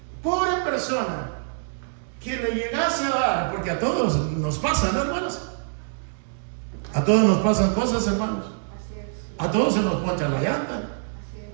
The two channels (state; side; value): silent; left; digital silence